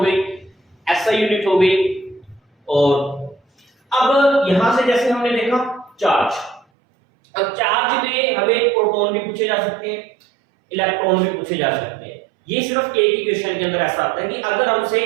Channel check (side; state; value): left; drops out; at 6.7 s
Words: एसआई यूनिट हो गई, और अब यहां से जैसे हमने देखा चार्ज, अब चार्ज में हमें प्रोटॉन भी पूछे जा सकते हैं, इलेक्ट्रॉन भी पूछे जा सकते हैं। ये सिर्फ एक ही क्वेश्चन के अंदर ऐसा आता है कि अगर हमसे